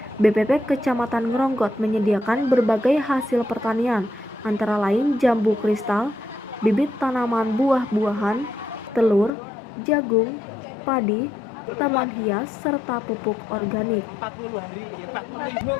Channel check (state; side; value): drops out; right; at 9.3 s